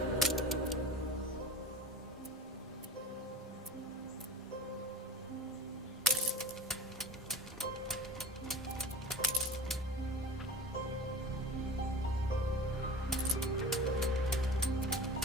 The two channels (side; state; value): both; normal; correlation 0.37